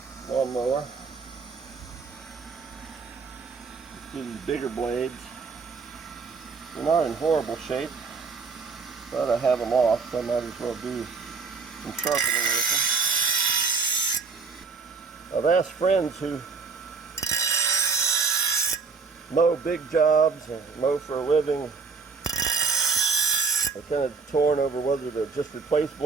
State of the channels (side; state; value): left; quieter; 4.9 dB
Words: lawnmower. Let's do these bigger blades. They're not in horrible shape, but I have them off, so I might as well do some sharpening with them. I've asked friends who mow big jobs and mow for a living. They're kind of torn over whether to just replace